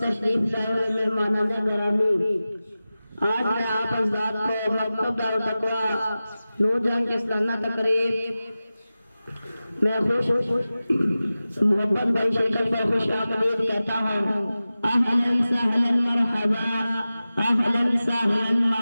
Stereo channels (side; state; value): both; inverted; correlation -0.96